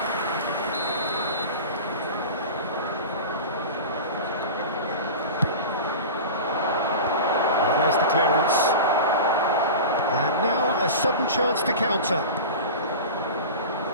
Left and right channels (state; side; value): inverted; both; correlation -0.31